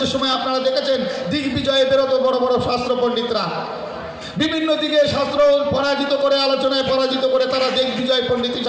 সময় আপনারা দেখেছেন দিগ্বিজয়ে বেরোতো বড় বড় শাস্ত্র পণ্ডিতরা, বিভিন্ন দিকে শাস্ত্র পরাজিত করে, আলোচনায় পরাজিত করে তারা দিগ্বিজয় পণ্ডিত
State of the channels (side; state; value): both; identical; correlation 1.00